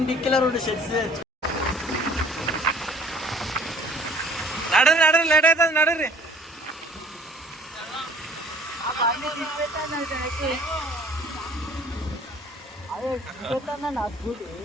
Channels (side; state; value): both; normal; correlation 0.53